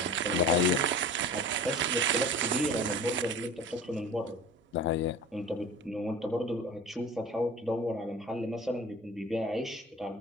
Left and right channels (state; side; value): normal; both; correlation 0.39